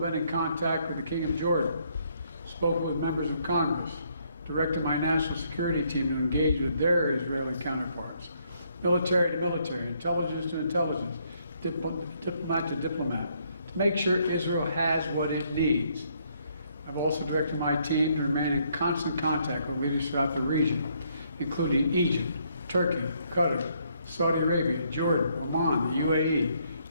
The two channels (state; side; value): inverted; both; correlation -0.70